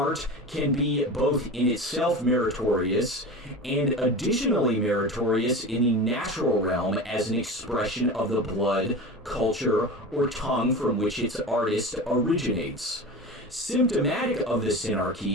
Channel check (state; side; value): normal; both; correlation 0.30